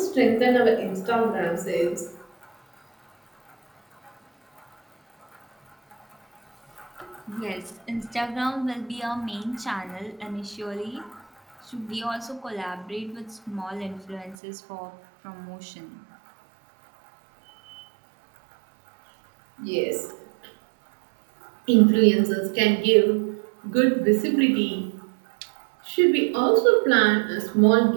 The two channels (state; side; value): drops out; left; at 14.4 s